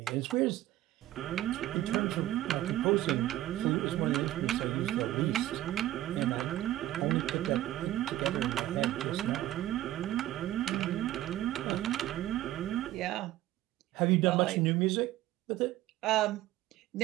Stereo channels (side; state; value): left; quieter; 14.5 dB